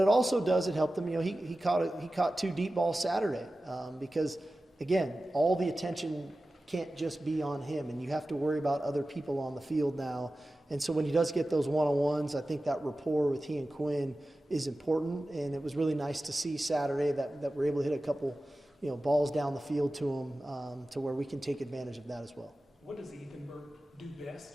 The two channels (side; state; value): both; normal; correlation 0.95